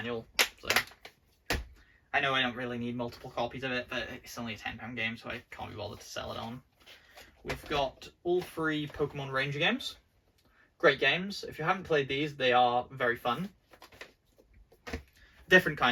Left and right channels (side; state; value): both; identical; correlation 1.00